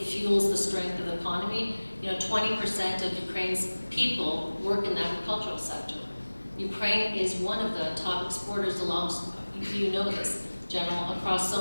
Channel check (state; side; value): inverted; both; correlation -1.00